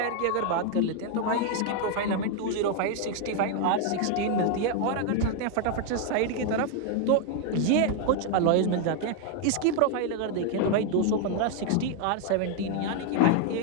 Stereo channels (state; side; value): different; both; correlation 0.00